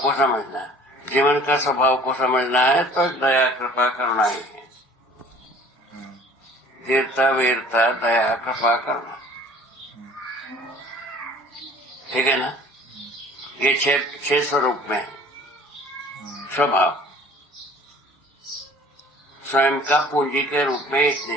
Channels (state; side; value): normal; both; correlation 0.50